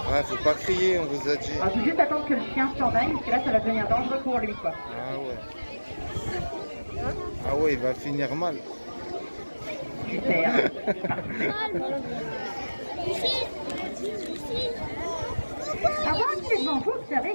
Ouais, faut pas crier, on vous a dit. Il faut juste attendre que le chien s'en aille, parce que là, ça va devenir dangereux pour lui, quoi. Ah ouais. Ah ouais, il va finir mal. Super. Avant qu'il devant vous, observez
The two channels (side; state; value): both; inverted; correlation -1.00